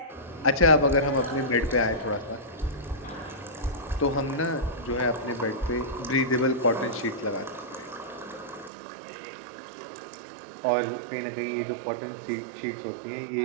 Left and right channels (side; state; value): left; drops out; at 8.7 s